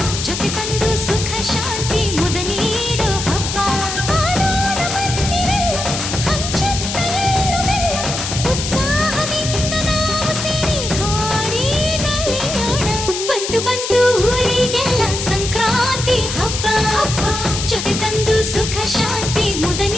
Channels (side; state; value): left; noise; hiss, 5 dB below the sound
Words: ಜೊತೆ ತಂದು ಸುಖ ಶಾಂತಿ ಮುದ ನೀಡೋ ಹಬ್ಬ ಮಾಡೋಣ ಬನ್ನಿರೆಲ್ಲ ಹಂಚುತ್ತ ಎಳ್ಳು ಬೆಲ್ಲ ಉತ್ಸಾಹದಿಂದ ನಾವು ಸೇರಿ ಹಾಡಿ ನಲಿಯೋಣ ಬಂತು ಬಂತು ಊರಿಗೆಲ್ಲ ಸಂಕ್ರಾಂತಿ ಹಬ್ಬ ಜೊತೆ ತಂದು ಸುಖ ಶಾಂತಿ ಮುದ